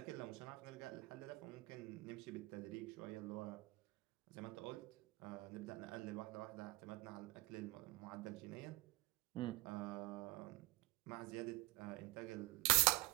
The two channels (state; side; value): quieter; left; 18.7 dB